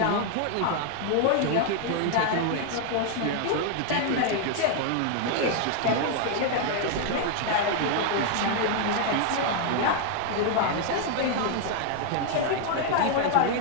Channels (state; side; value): different; both; correlation 0.00